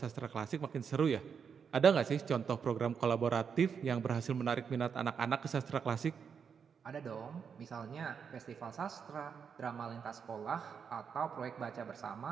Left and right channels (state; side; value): quieter; left; 6.7 dB